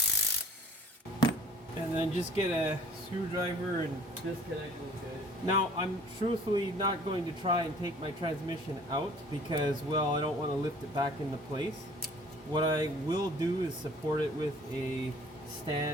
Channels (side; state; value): both; normal; correlation 0.50